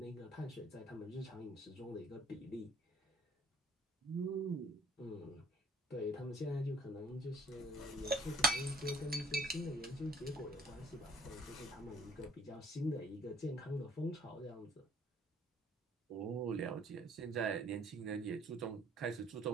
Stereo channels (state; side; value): normal; both; correlation 0.56